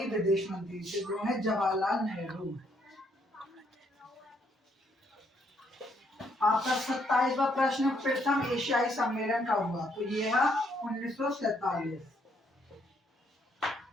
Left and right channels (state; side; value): normal; both; correlation 0.71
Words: विदेश मंत्री थे, वो है जवाहरलाल नेहरू। आपका 27वां प्रश्न, प्रथम एशियाई सम्मेलन कब हुआ? तो ये है 1947।